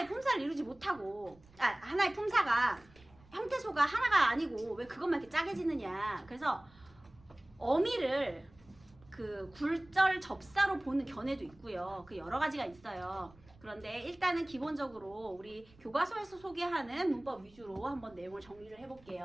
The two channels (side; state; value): right; noise; rumble, 26 dB below the sound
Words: 품사를 이루지 못하고 하나의 품사가 형태소가 하나가 아니고 왜 그것만 이렇게 짜게 지느냐. 그래서 어미를 그 굴절 접사로 보는 견해도 있고요. 그 여러 가지가 있어요. 그런데 일단은 기본적으로 우리 교과서에서 소개하는 문법 위주로 한번 내용을 정리를